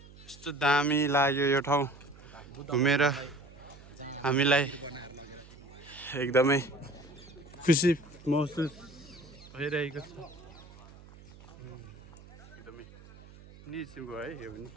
यस्तो दामी लाग्यो यो ठाउँ घुमेर हामीलाई एकदमै खुसी महसुस भइरहेको छ एकदमै निस्किएको है यो पनि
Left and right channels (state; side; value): noise; right; hum, 20 dB below the sound